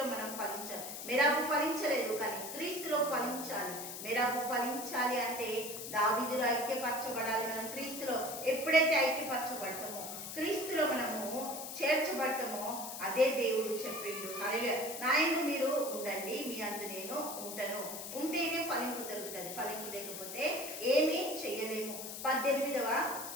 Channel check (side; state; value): left; noise; hiss, 8 dB below the sound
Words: మనం ఫలించాలి. మేరాబు ఫలించలేదు, కానీ క్రీస్తులో ఫలించాలి. మేరాబు ఫలించాలి అంటే దావీదులో ఐక్యపరచబడాలి. మనం క్రీస్తులో ఎప్పుడైతే ఐక్యపరచబడతామో, క్రీస్తులో మనము చేర్చబడతామో, అదే దేవుడు చెప్పిండు. హల్లెలూయా. నా యందు మీరు ఉండండి, మీ అందు నేను ఉంటాను. ఉంటేనే ఫలింపు దొరుకుతుంది, ఫలింపు లేకపోతే ఏమీ చెయ్యలేము. 18వ